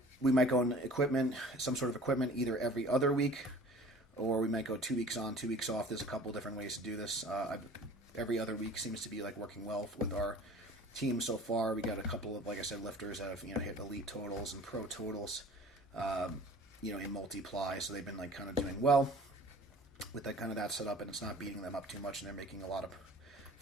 we might go on equipment, some sort of equipment, either every other week, or we might go 2 weeks on, 2 weeks off. There's a couple different ways to do this. Every other week seems to be like working well with our team so far. We got a couple of, like I said, lifters that have hit elite totals and pro totals. In multiply, so they've been like kind of doing well with that kind of that setup, and it's not beating them up too much, and they're making a lot of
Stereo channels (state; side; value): normal; both; correlation 0.46